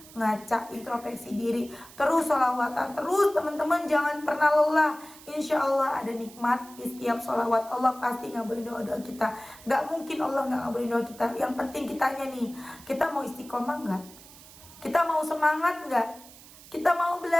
ngaca, introspeksi diri, terus sholawatan terus teman-teman, jangan pernah lelah. Insya Allah ada nikmat di setiap sholawat. Allah pasti ngabulin doa-doa kita. Nggak mungkin Allah nggak ngabulin doa kita. Yang penting kitanya nih, kita mau istiqomah nggak? Kita mau semangat nggak? Kita mau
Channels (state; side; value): noise; right; hiss, 20 dB below the sound